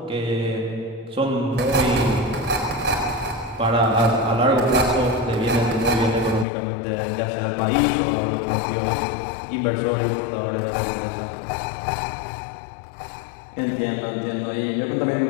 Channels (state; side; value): drops out; right; at 6.5 s